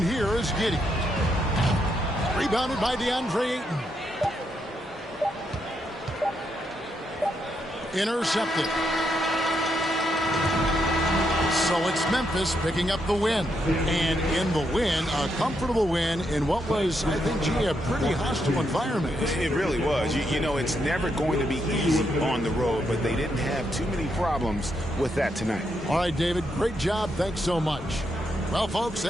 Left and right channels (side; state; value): both; normal; correlation 0.80